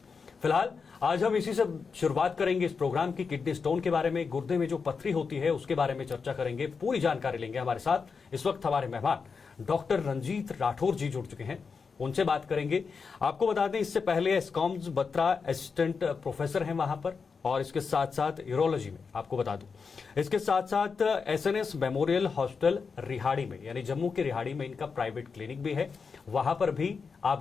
फिलहाल आज हम इसी से शुरुआत करेंगे इस प्रोग्राम की। किडनी स्टोन के बारे में, गुर्दे में जो पथरी होती है उसके बारे में चर्चा करेंगे, पूरी जानकारी लेंगे। हमारे साथ इस वक्त हमारे मेहमान डॉक्टर रंजीत राठौर जी जुड़ चुके हैं, उनसे बात करेंगे। आपको बता दें, इससे पहले एस्कॉम्स बत्रा असिस्टेंट प्रोफेसर हैं वहां पर, और इसके साथ साथ यूरोलॉजी में आपको बता दूं, इसके साथ साथ एसएनएस मेमोरियल हॉस्पिटल रिहाड़ी में, यानी जम्मू के रिहाड़ी में इनका प्राइवेट क्लिनिक भी है। वहां पर भी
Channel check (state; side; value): quieter; right; 5.3 dB